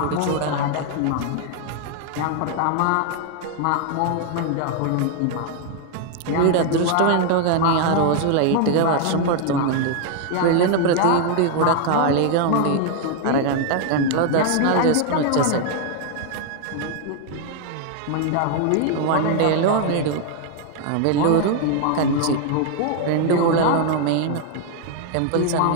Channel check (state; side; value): different; both; correlation 0.00